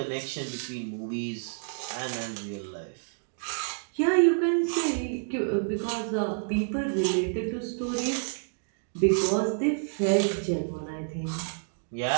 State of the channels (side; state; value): left; silent; digital silence